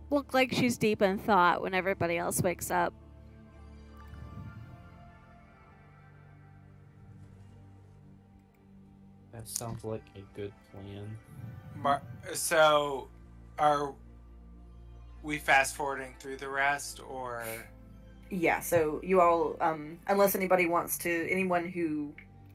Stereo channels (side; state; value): both; identical; correlation 1.00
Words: look like she's deep in thought when everybody else wakes up. That sounds like a good plan. So, are we fast forwarding through the rest, or? Yeah, so you all, unless anyone who